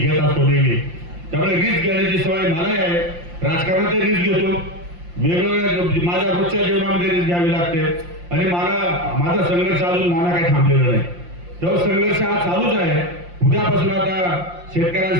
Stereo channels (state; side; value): late; left; 5.7 ms